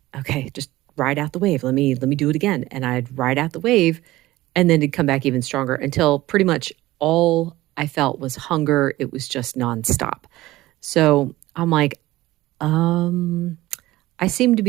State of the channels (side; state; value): left; quieter; 17.3 dB